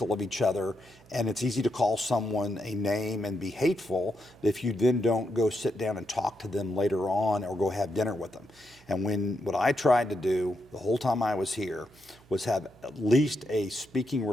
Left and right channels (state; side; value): noise; right; hum, 27 dB below the sound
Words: of each other, and it's easy to call someone a name and be hateful if you then don't go sit down and talk to them later on or go have dinner with them. And what I tried to do the whole time I was here was have at least a speaking